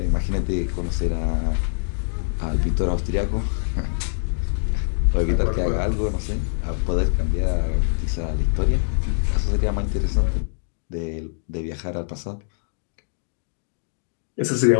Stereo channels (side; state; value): right; silent; digital silence